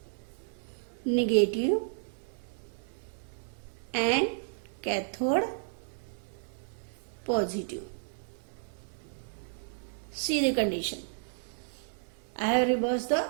negative and cathode positive. See the condition. I have reversed the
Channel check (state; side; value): silent; left; digital silence